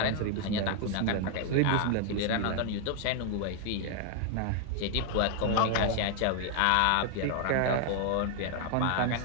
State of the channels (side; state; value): both; different; correlation 0.00